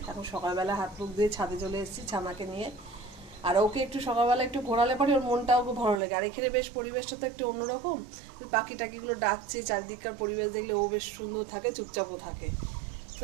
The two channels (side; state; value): left; drops out; at 6.0 s